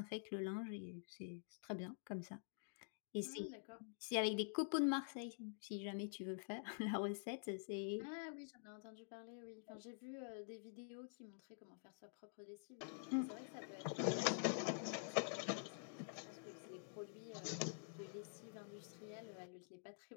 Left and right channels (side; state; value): right; silent; digital silence